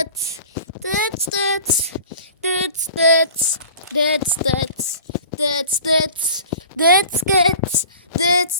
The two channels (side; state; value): both; inverted; correlation -0.43